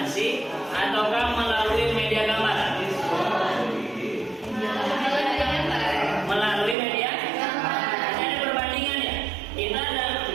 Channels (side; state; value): left; drops out; at 6.8 s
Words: ataukah melalui media gambar. Melalui media ada perbandingan ya. Kita